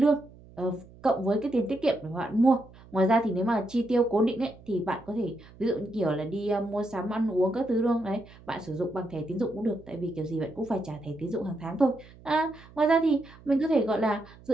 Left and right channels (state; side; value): noise; right; hum, 22 dB below the sound